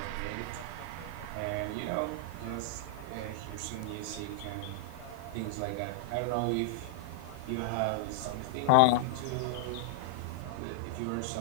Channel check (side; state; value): both; different; correlation -0.01